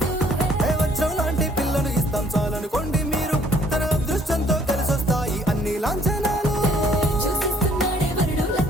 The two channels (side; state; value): both; normal; correlation 0.61